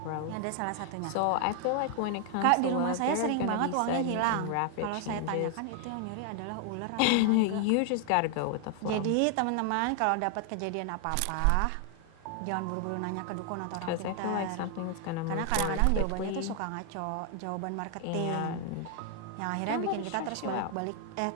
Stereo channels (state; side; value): different; both; correlation 0.00